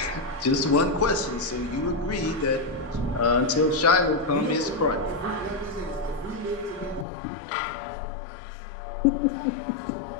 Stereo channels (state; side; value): drops out; right; at 7.1 s